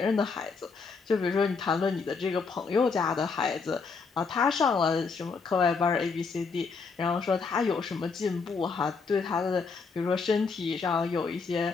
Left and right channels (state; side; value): quieter; right; 4.9 dB